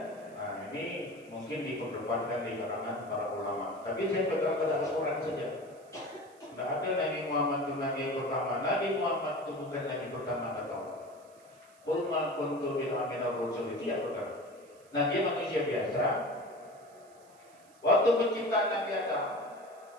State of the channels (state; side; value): noise; right; hiss, 29 dB below the sound